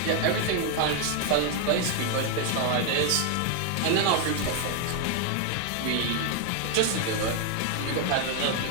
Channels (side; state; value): both; different; correlation 0.01